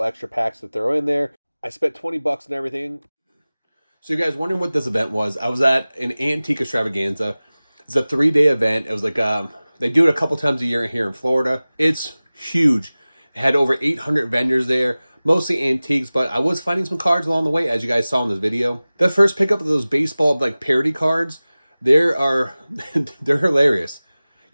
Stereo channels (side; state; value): both; inverted; correlation -0.98